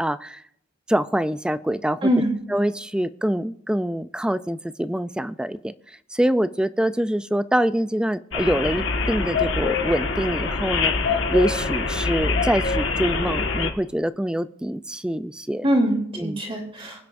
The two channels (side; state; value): both; normal; correlation 0.75